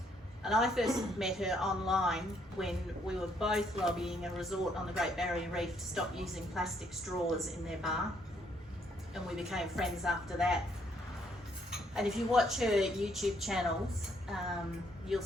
and I first met her online when we were both lobbying a resort on the Great Barrier Reef to stop using plastic straws in their bar, and we became friends after that. And if you watch her YouTube channels, you'll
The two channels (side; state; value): both; normal; correlation 0.70